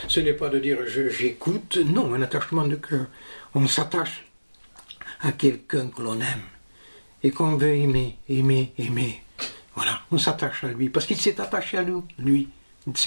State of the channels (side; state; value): both; inverted; correlation -1.00